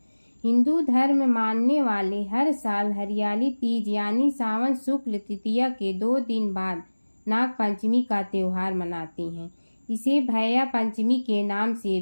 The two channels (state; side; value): inverted; both; correlation -1.00